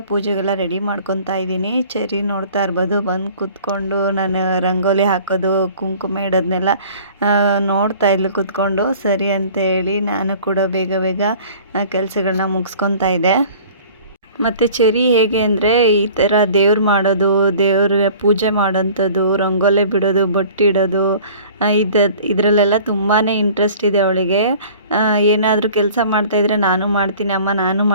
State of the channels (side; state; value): both; inverted; correlation -0.48